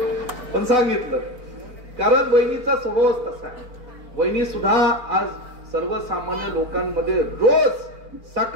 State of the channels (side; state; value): left; late; 4.4 ms